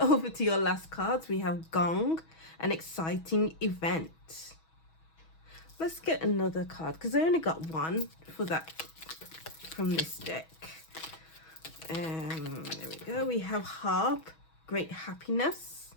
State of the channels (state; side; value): late; right; 6.2 ms